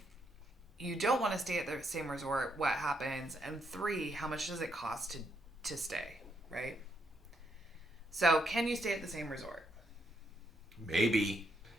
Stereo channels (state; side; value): normal; both; correlation 0.77